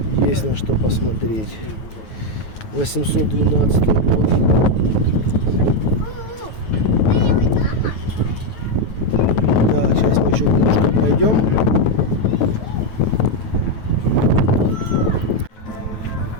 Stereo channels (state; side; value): late; right; 9.3 ms